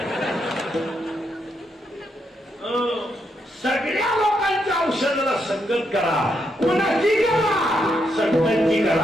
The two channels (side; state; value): both; normal; correlation 0.80